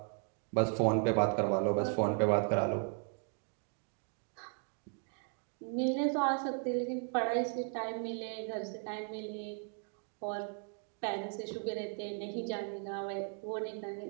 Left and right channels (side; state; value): left; quieter; 39.0 dB